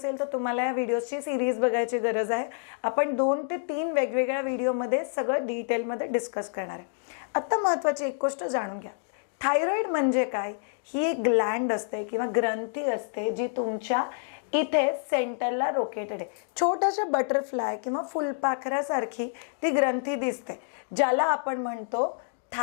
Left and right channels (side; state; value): right; silent; digital silence